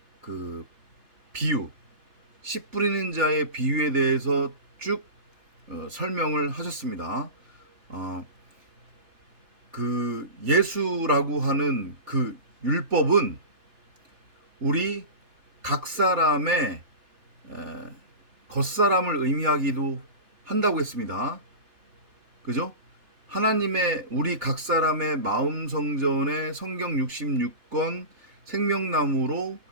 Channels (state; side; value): late; left; 3.3 ms